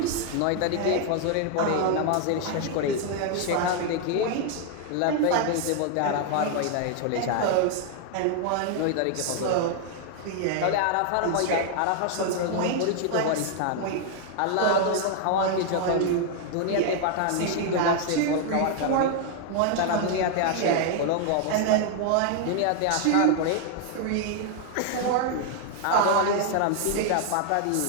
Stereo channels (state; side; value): different; both; correlation 0.00